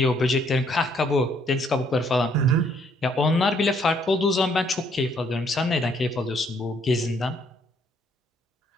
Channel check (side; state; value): both; normal; correlation 0.67